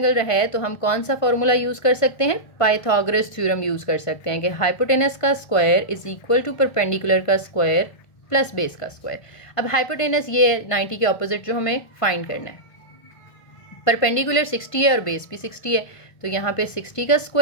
है तो हम कौन सा फॉर्मूला यूज़ कर सकते हैं, पाइथागोरस थ्योरम यूज़ कर सकते हैं कि हाइपोटेनस का square is equal to perpendicular का स्क्वायर प्लस बेस का स्क्वायर। अब हाइपोटेनस ये 90 के ऑपोजिट जो हमें फाइंड करना है, परपेंडिकुलर 60 है और बेस भी 60 है, तो यहाँ पे 60 का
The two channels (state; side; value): late; right; 1.5 ms